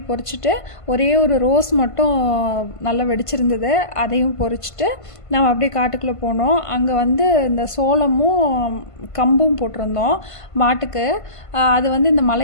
பொறிச்சிட்டு ஒரே ஒரு ரோஸ் மட்டும் நல்லா வெடிச்சிருந்தது, அதையும் பொறிச்சிட்டு நம்ம அப்படியே காட்டுக்குள்ளே போனோம். அங்கே வந்து இந்த சோளமும் கம்பும் போட்டிருந்தோம் மாட்டுக்கு. அது வந்து இந்த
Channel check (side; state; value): right; late; 1.5 ms